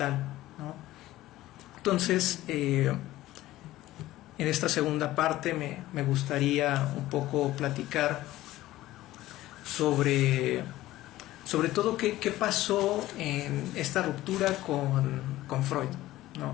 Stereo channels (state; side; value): quieter; right; 16.0 dB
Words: ¿no? Entonces, en esta segunda parte me gustaría un poco platicar sobre todo qué pasó en esta ruptura con Freud,